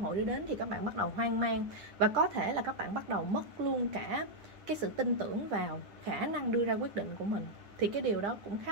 đưa đến, thì các bạn bắt đầu hoang mang, và có thể là các bạn bắt đầu mất luôn cả cái sự tin tưởng vào khả năng đưa ra quyết định của mình. Thì cái điều đó cũng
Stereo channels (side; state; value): left; late; 9.9 ms